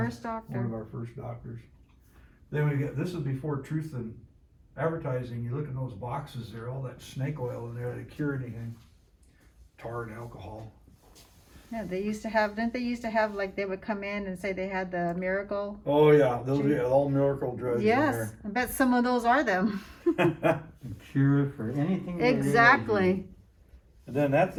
doctor. One of our first doctors. Then we get, this is before Truth in Advertising. You look in those boxes there, all that snake oil in there to cure anything. Tar and alcohol. Yeah, didn't they used to have they would come in and say they had the miracle? Oh yeah, those are all miracle drugs in Yes, there. I bet some of those are them. Cure for anything. Exactly. And then that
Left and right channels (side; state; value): both; identical; correlation 1.00